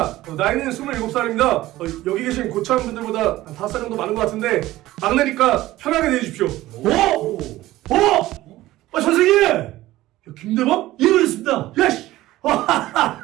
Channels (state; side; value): quieter; left; 16.4 dB